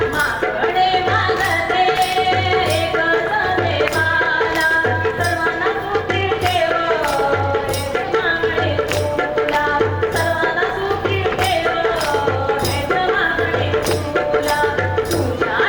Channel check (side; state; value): both; identical; correlation 1.00